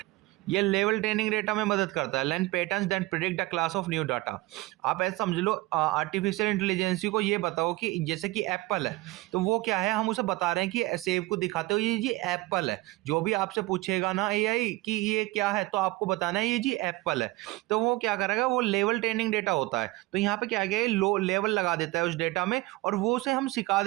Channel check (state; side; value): quieter; left; 20.4 dB